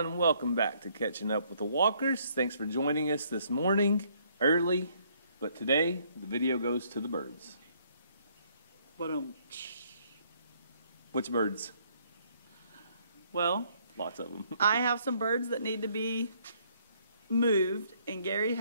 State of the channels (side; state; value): both; inverted; correlation -0.67